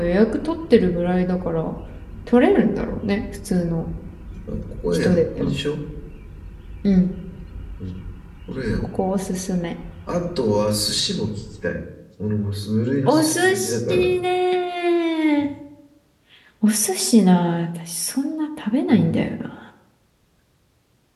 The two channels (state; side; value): identical; both; correlation 1.00